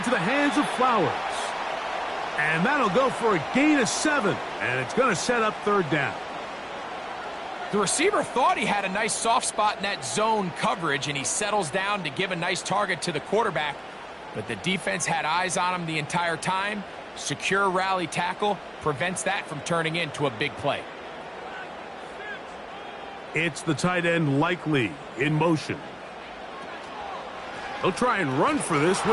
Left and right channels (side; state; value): both; identical; correlation 1.00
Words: the hands of Flowers. And that'll go for a gain of 7, and it's going to set up third down. The receiver thought he had a nice soft spot in that zone coverage, and he settles down to give a nice target to the quarterback. But the defense had eyes on him the entire time. Secure rally tackle prevents that from turning into a big play. It's the tight end Likely in motion. He'll try and run for this